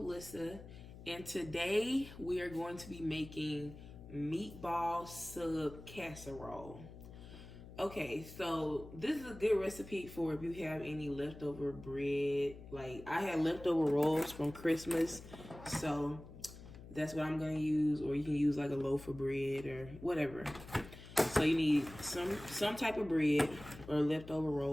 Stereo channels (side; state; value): left; noise; hum, 15 dB below the sound